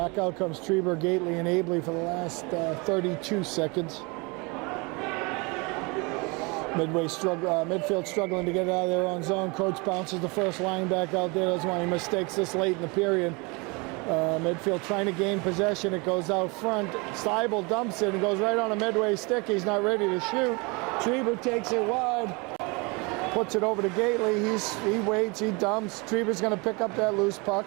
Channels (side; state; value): left; quieter; 28.5 dB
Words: out comes Treber, Gately, and Abley for the last 32 seconds. Midfield struggling to get it out of their own zone. Coach bounces the first line back out there. That's why he mistakes this late in the period. Midfield trying to gain possession. It goes out front. Seibel dumps it and goes right on a Medway stick. He's not ready to shoot. Treber takes it wide. Puts it over to Gately. He waits. He dumps. Treber's going to pick up that loose puck.